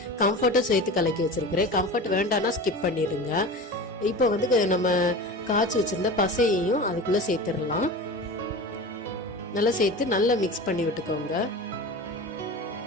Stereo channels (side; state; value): both; normal; correlation 0.32